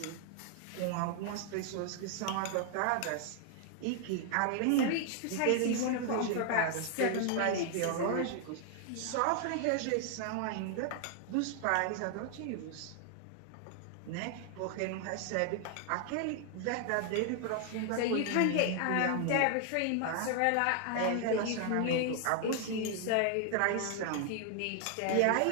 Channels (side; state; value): both; different; correlation 0.00